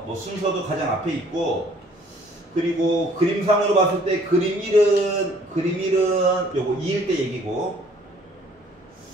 순서도 가장 앞에 있고, 그리고 그림상으로 봤을 때 그림 1은 요거 2일 때 얘기고,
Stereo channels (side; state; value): both; normal; correlation 0.59